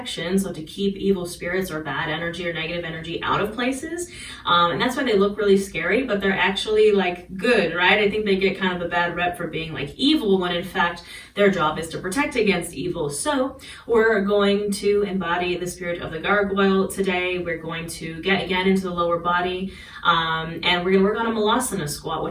so to keep evil spirits or bad energy or negative energy out of places. And that's why they look really scary, but they're actually like good, right? I think they get kind of a bad rep for being like evil when in fact their job is to protect against evil. So we're going to embody the spirit of the gargoyle today. We're going to get again into the lower body. And we're going to work on a malasana squat,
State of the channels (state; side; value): identical; both; correlation 1.00